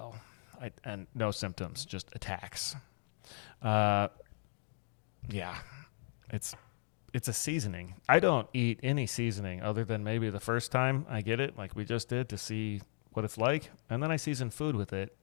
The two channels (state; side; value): silent; right; digital silence